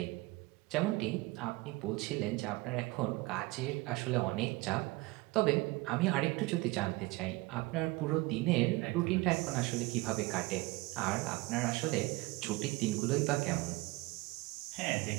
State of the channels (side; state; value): left; quieter; 22.4 dB